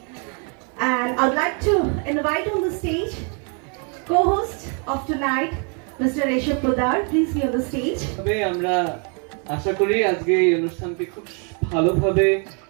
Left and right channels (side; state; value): left; quieter; 38.4 dB